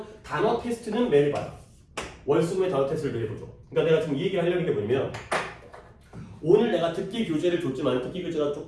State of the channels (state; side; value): identical; both; correlation 1.00